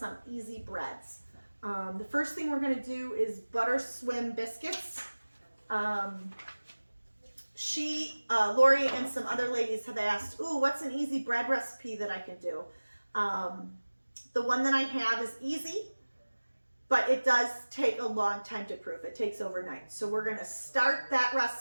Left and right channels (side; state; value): both; inverted; correlation -1.00